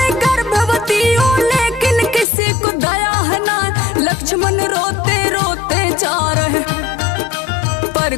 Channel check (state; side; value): drops out; right; at 2.2 s